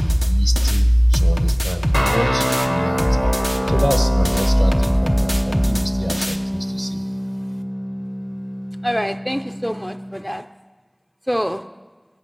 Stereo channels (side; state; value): both; identical; correlation 1.00